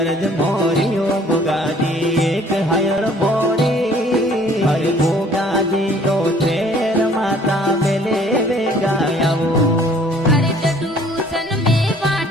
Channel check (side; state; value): both; normal; correlation 0.56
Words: मोरियो गोगाजी एक हयर मोरी अरे गोगाजी तो तेर माता बेले वे गायावो अरे टटूसन में